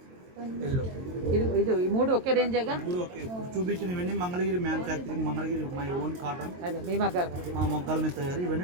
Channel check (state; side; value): late; left; 22 ms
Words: ఎల్లో. ఇది ఈ 3 ఒకే రేంజేగా? 3 ఓకే. ఇప్పుడు చూపించినవన్నీ Mangalagiri manufacturing, Mangalagiri my own cotton. అదే మీ మగ్గాల మా మొగ్గల మీద తయారు.